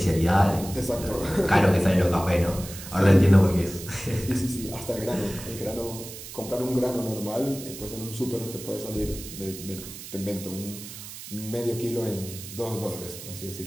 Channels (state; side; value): noise; right; hiss, 12 dB below the sound